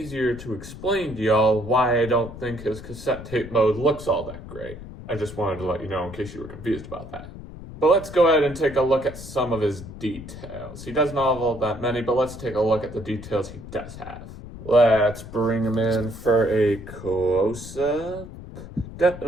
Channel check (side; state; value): left; noise; rumble, 13 dB below the sound